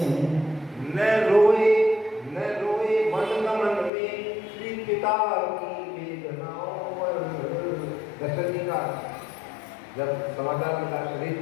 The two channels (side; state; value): right; drops out; at 3.9 s